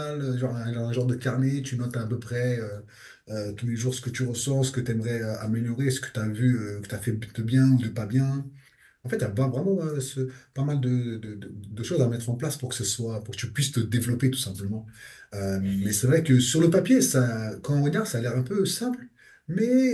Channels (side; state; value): both; identical; correlation 1.00